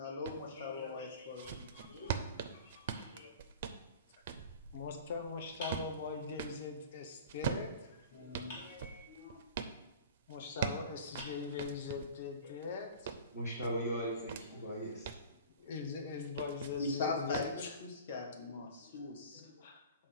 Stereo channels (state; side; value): inverted; both; correlation -0.39